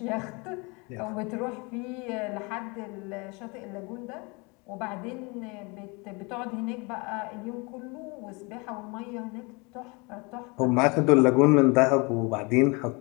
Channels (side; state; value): right; quieter; 28.8 dB